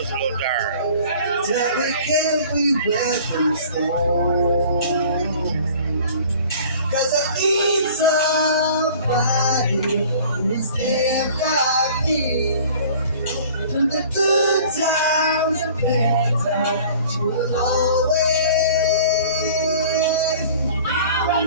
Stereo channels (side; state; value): both; inverted; correlation -0.47